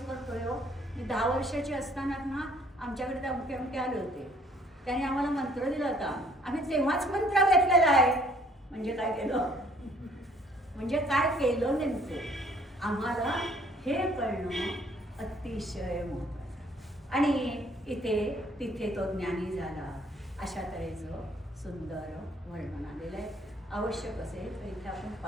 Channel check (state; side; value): normal; both; correlation 0.61